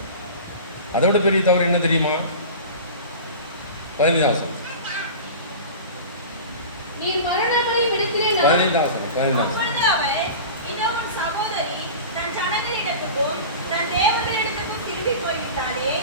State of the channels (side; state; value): both; inverted; correlation -0.34